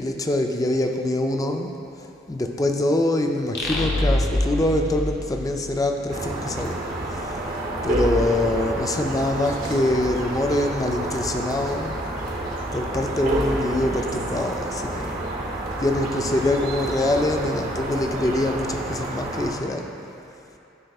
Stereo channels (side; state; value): both; normal; correlation 0.70